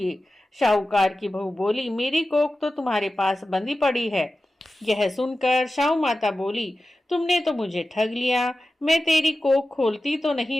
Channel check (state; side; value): normal; both; correlation 0.94